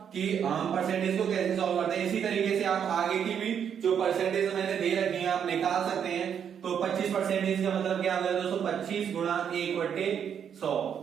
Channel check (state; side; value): quieter; left; 8.1 dB